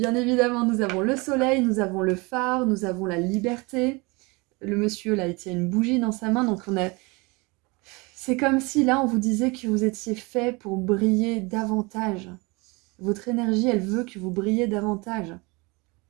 évidemment, nous avons le soleil, nous avons le phare, nous avons la liberté. Le monsieur, là, il tient une bougie dans sa main, donc on a... C'est comme si, là, on vous disait que vous étiez fait pour briller davantage. Votre énergie, elle veut que vous brillez davantage.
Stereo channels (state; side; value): quieter; left; 26.7 dB